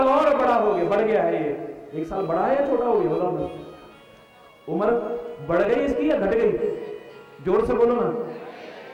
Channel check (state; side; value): identical; both; correlation 1.00